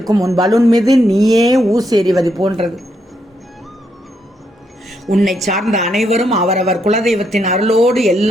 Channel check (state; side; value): normal; both; correlation 0.78